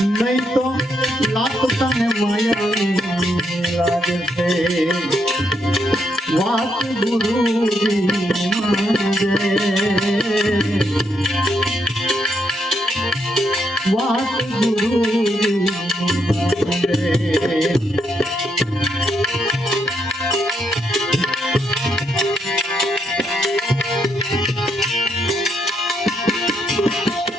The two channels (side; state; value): both; normal; correlation 0.77